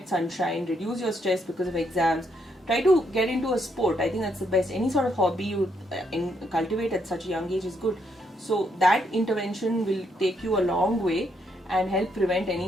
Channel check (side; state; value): both; normal; correlation 0.75